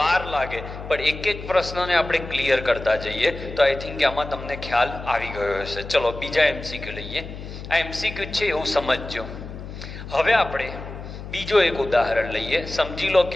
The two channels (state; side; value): noise; left; hum, 11 dB below the sound